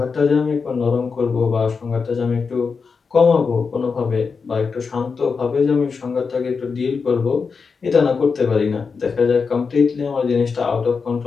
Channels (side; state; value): right; quieter; 5.2 dB